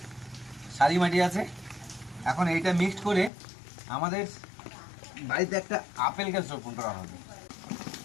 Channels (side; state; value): right; drops out; at 3.3 s